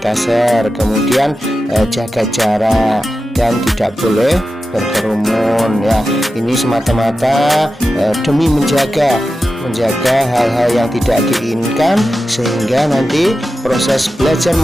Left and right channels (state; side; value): normal; both; correlation 0.92